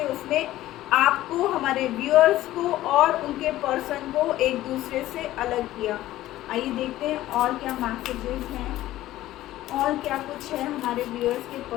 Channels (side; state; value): right; quieter; 15.0 dB